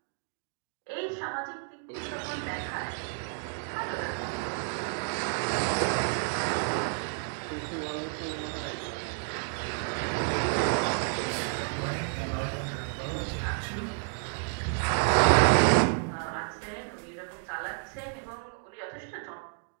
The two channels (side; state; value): left; silent; 57 dB below the other